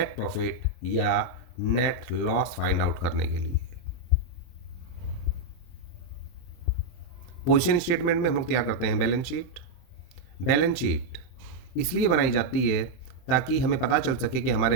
प्रॉफिट या नेट लॉस फाइंड आउट करने के लिए। पोजीशन स्टेटमेंट में हम लोग तैयार करते हैं बैलेंस शीट। बैलेंस शीट इसलिए बनाई जाती है ताकि हमें पता चल सके कि हमारे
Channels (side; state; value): right; late; 24 ms